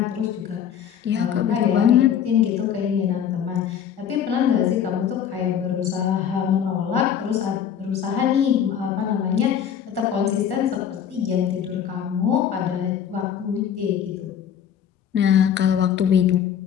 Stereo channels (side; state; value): right; quieter; 8.7 dB